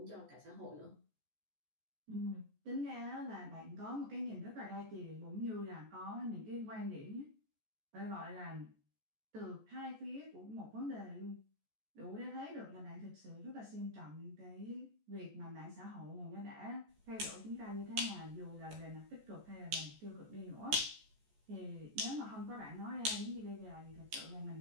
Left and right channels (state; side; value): late; left; 14 ms